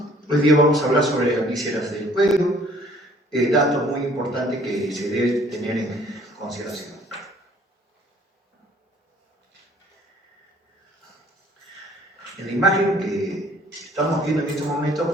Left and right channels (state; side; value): normal; both; correlation 0.57